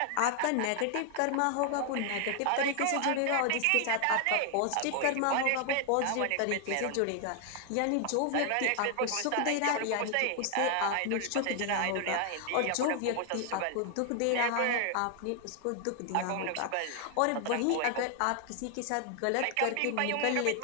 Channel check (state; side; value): different; both; correlation 0.00